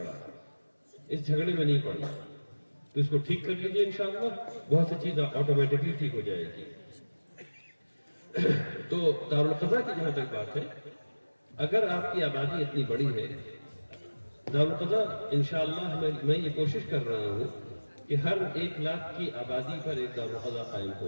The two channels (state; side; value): inverted; both; correlation -1.00